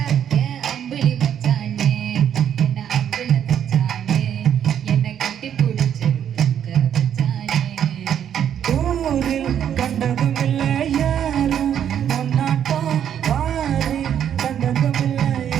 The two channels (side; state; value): left; quieter; 9.4 dB